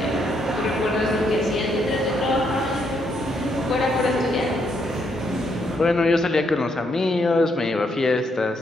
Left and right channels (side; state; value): both; normal; correlation 0.75